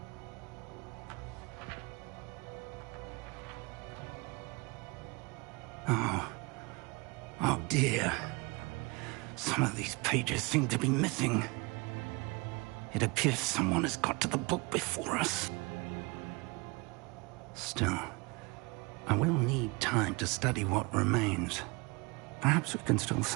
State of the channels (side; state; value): left; quieter; 27.4 dB